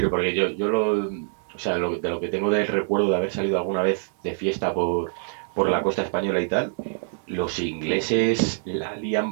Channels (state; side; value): silent; left; 62 dB below the other